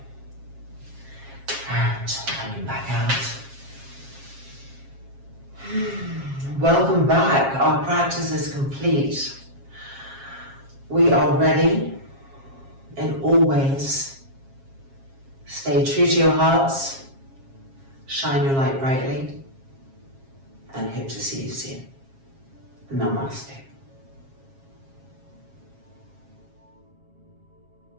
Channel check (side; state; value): left; late; 7.4 ms